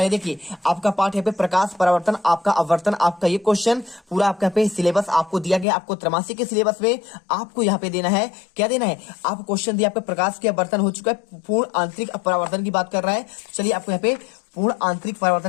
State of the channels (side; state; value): right; drops out; at 5.7 s